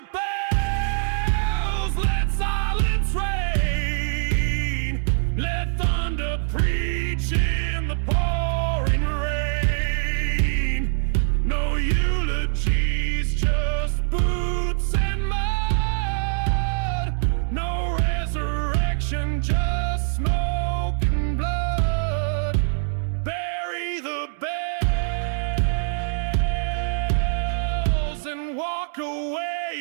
bells, let silence reign, let thunder preach in the pouring rain. No eulogies, just boots and mud, no resurrection, just smoke and blood. Bury the bells and walk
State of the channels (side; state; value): left; silent; digital silence